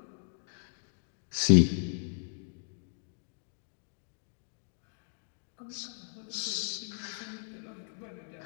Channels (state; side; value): silent; right; 54 dB below the other